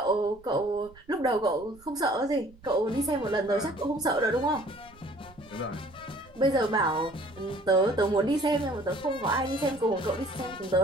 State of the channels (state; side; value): noise; right; rumble, 25 dB below the sound